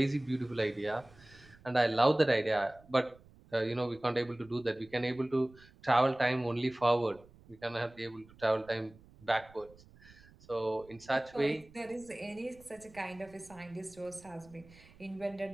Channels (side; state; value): right; noise; rumble, 24 dB below the sound